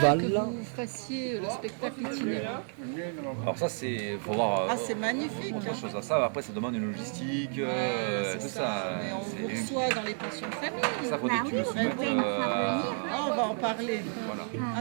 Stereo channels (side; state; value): left; silent; 57 dB below the other